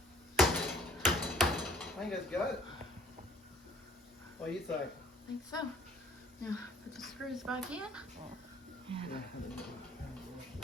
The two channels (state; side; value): normal; both; correlation 0.55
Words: I think that's got it. What do you think? I think so. Now, put the screws back in. And